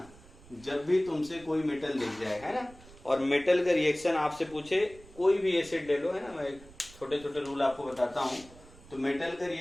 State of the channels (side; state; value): right; noise; rumble, 21 dB below the sound